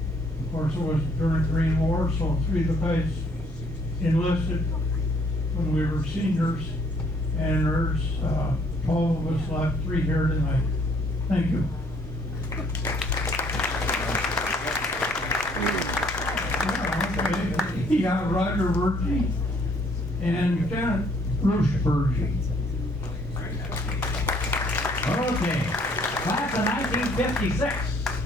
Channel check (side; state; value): both; normal; correlation 0.63